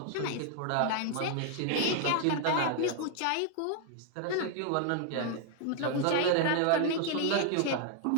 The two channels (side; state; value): both; different; correlation 0.00